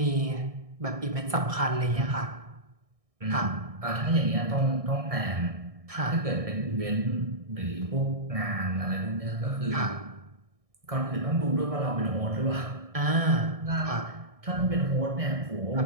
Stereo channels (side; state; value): left; late; 1.6 ms